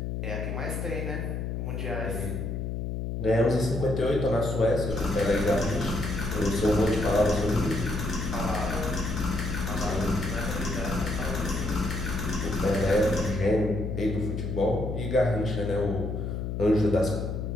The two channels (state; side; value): noise; left; hum, 3 dB below the sound